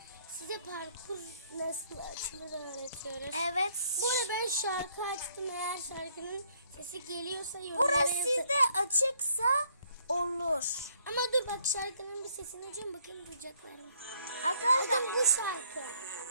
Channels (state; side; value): inverted; both; correlation -0.66